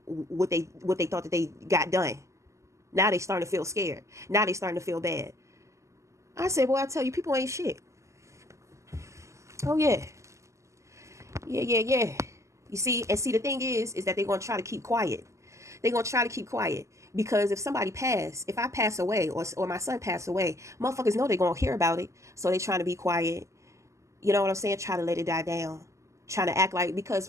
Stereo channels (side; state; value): left; late; 0.14 ms